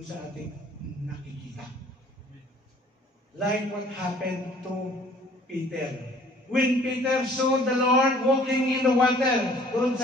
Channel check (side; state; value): both; normal; correlation 0.55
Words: ating nakikita. Like what happened to Peter. When Peter saw the Lord walking in the water doon